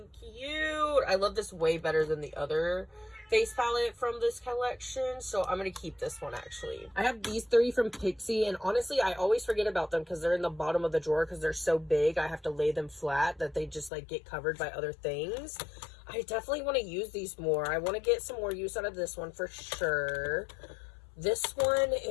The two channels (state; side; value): drops out; right; at 13.9 s